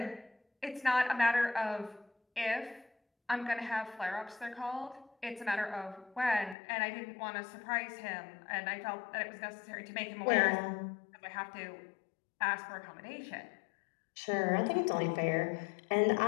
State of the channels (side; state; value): right; drops out; at 6.6 s